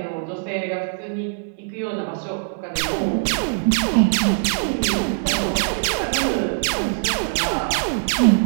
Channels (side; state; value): left; silent; digital silence